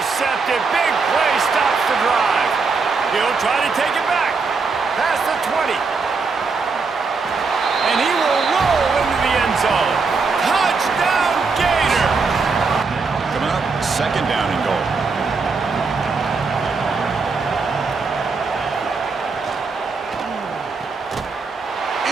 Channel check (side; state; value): left; quieter; 4.5 dB